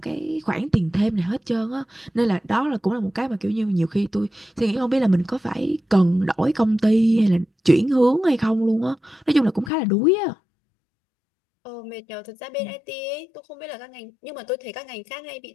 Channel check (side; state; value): right; drops out; at 9.7 s